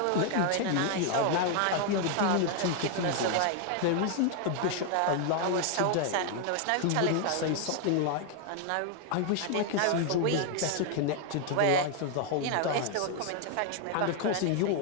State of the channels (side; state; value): both; different; correlation 0.00